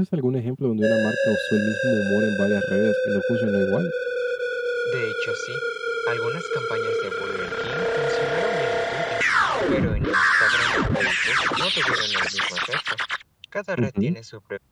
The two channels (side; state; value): both; identical; correlation 1.00